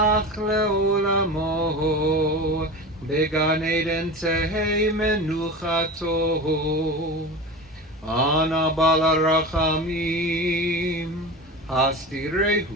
le'olamo began Eden tehei menuchato Ana bala rachamim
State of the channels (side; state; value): both; normal; correlation 0.29